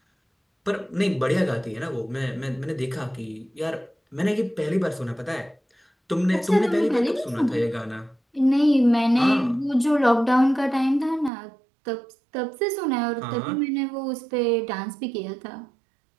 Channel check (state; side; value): drops out; left; at 11.3 s